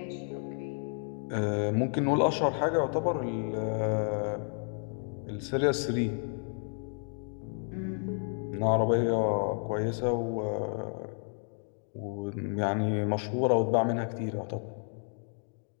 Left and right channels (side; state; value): right; silent; 57 dB below the other